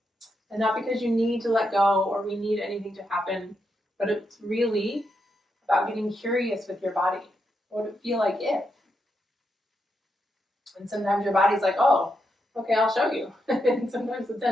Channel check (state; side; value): normal; both; correlation 0.83